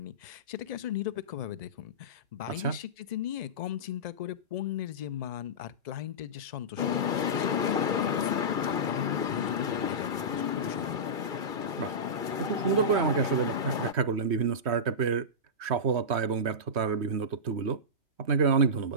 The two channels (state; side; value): late; left; 2.3 ms